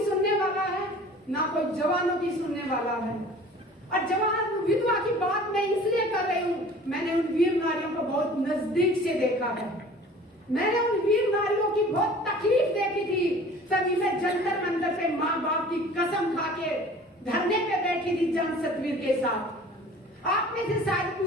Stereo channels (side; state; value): both; normal; correlation 0.45